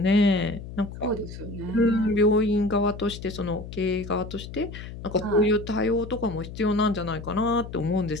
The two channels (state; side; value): noise; left; hum, 11 dB below the sound